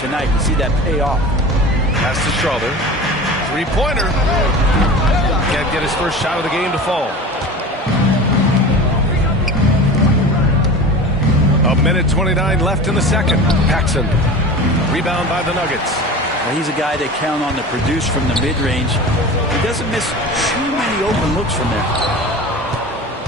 You see that pay off. Pass to Schroeder. Three-pointer. Can't get his first shot of the game to fall. A minute 29 left in the second. Paxson. Rebound by the Nuggets. Well, he's a guy they count on to produce from the mid-range. He doesn't miss too many open looks from there.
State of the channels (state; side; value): normal; both; correlation 0.34